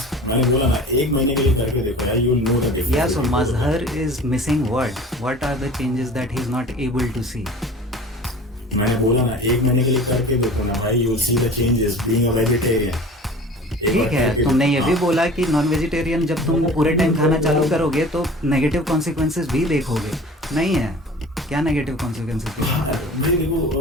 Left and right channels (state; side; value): normal; both; correlation 0.41